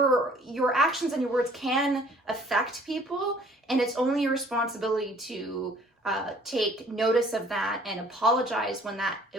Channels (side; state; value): both; normal; correlation 0.55